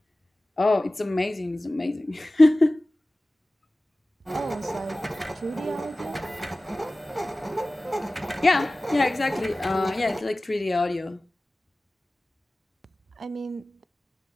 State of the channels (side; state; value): both; normal; correlation 0.97